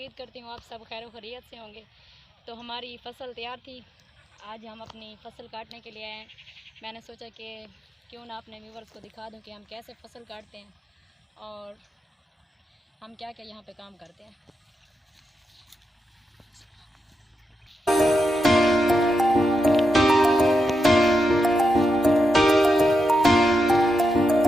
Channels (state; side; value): normal; both; correlation 0.86